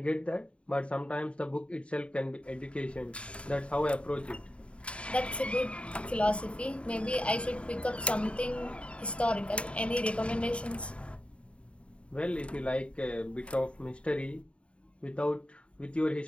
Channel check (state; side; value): late; right; 0.060 ms